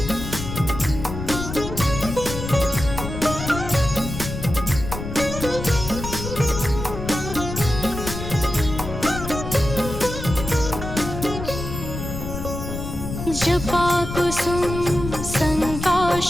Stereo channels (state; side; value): noise; left; rumble, 7 dB below the sound